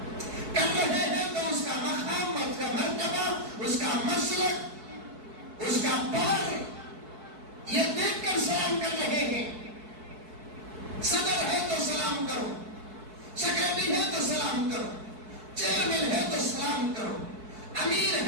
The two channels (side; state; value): left; late; 4.6 ms